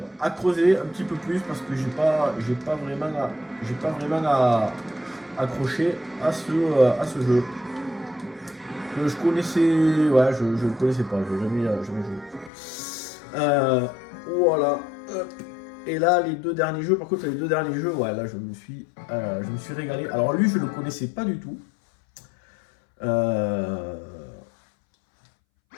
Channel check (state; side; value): drops out; right; at 12.5 s